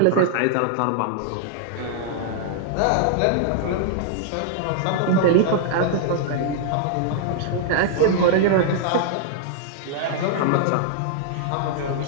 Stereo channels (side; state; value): both; different; correlation -0.01